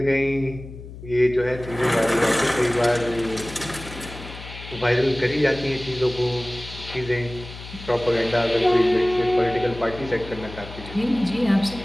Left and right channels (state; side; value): noise; left; hum, 14 dB below the sound